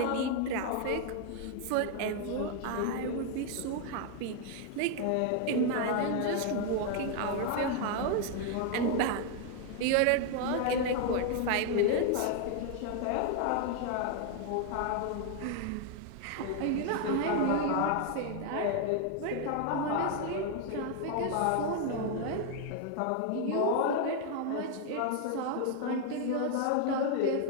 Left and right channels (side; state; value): both; different; correlation 0.00